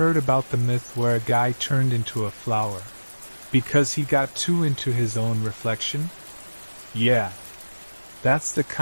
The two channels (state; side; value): inverted; both; correlation -1.00